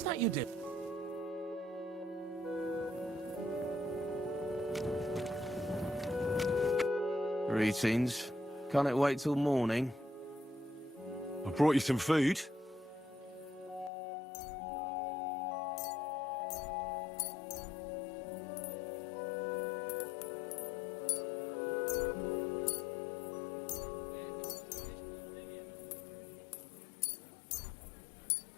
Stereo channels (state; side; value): drops out; right; at 13.9 s